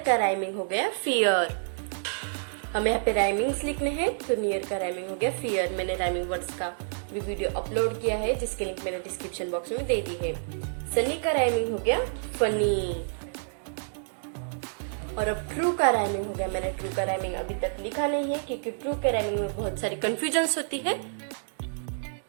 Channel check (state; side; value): silent; left; digital silence